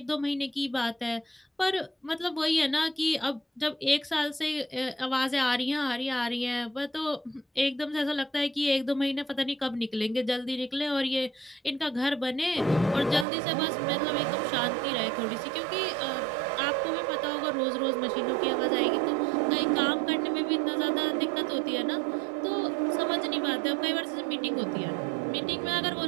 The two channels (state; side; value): drops out; left; at 13.2 s